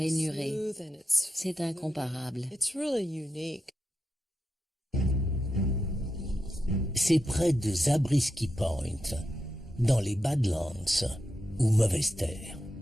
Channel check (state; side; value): normal; both; correlation 0.88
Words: C'est incomparable. C'est près de Zabriskie Point, dans les Badlands, ou Mauvaise Terre,